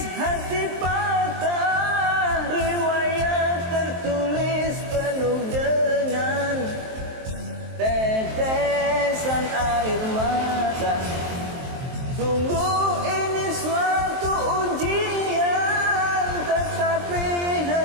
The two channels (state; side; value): late; left; 23 ms